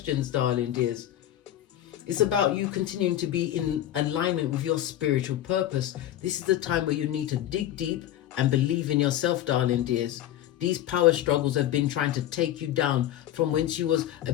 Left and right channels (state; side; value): quieter; right; 12.4 dB